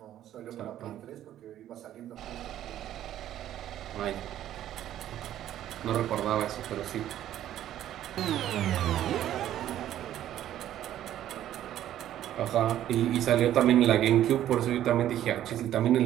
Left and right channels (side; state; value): left; quieter; 12.0 dB